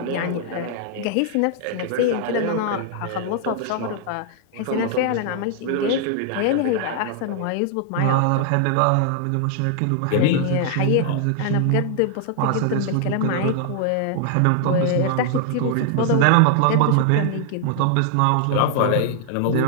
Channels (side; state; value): both; different; correlation -0.01